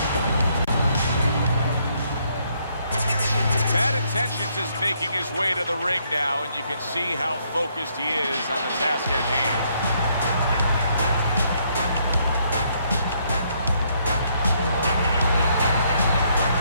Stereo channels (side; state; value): both; inverted; correlation -0.71